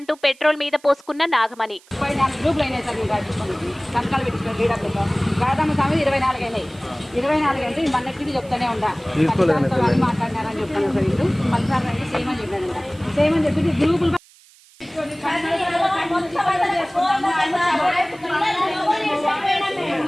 పెట్రోల్ మీద పోసుకున్న నాగమణి. 24 అంటే మన్నెట్టిది చెప్తానే ఉండా మాట్లాడినారని చెప్తాను సార్. వీళ్ళు మళ్ళీ సేమ్ అని చెప్పానంట. సేమ్ అని చెప్పి గ్రూపులు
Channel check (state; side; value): noise; right; hiss, 27 dB below the sound